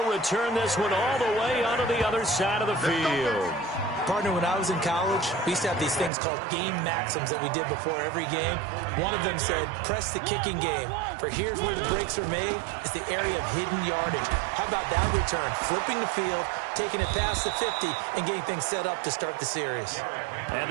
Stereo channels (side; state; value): left; drops out; at 6.1 s